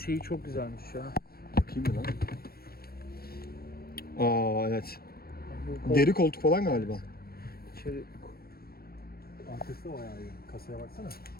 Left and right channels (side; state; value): right; late; 0.44 ms